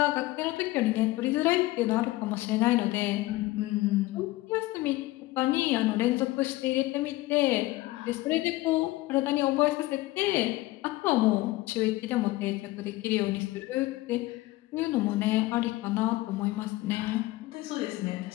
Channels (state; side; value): quieter; right; 18.7 dB